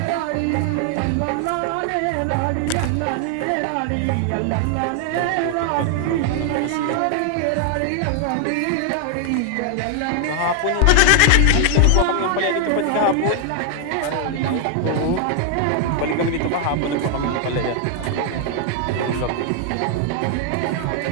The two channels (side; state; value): both; different; correlation 0.00